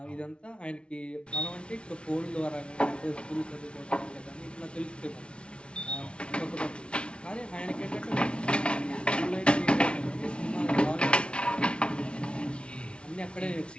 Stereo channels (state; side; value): late; right; 0.058 ms